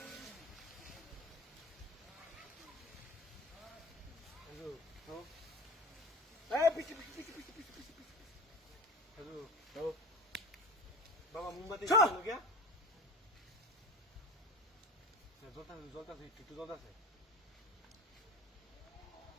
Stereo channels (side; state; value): both; normal; correlation 0.33